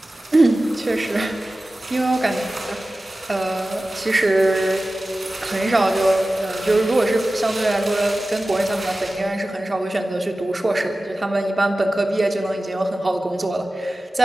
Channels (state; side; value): normal; both; correlation 0.96